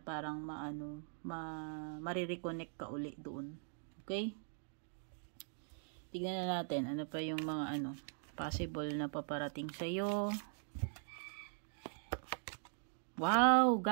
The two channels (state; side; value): silent; left; digital silence